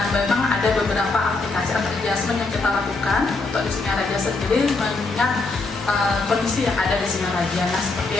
memang ada beberapa aplikasi atau adjustment yang kita lakukan untuk di Singaraja sendiri mengingat kondisi yang ada di Singaraja. Nah, seperti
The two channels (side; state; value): right; quieter; 3.6 dB